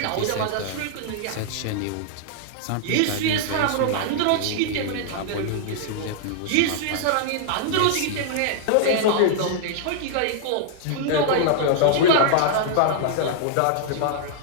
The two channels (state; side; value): different; both; correlation -0.01